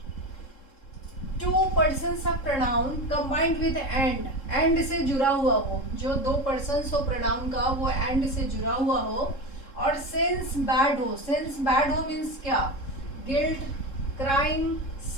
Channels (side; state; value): right; late; 3.7 ms